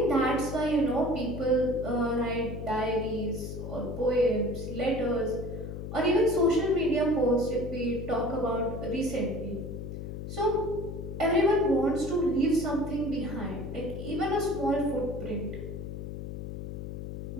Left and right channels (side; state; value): left; noise; hum, 7 dB below the sound